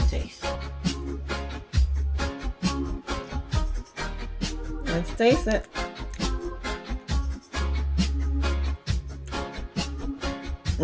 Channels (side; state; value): both; identical; correlation 1.00